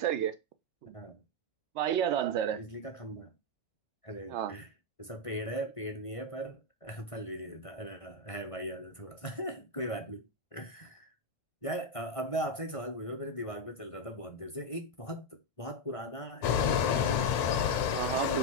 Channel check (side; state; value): right; late; 1.5 ms